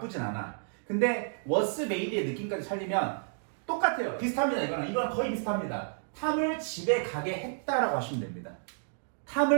않아. 근데 was made의 느낌까지 살리면 똑같아요. 비슷합니다. 이거는 거의 비슷합니다. 탐을 집에 가게 했다라고 하시면 됩니다.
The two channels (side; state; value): left; silent; digital silence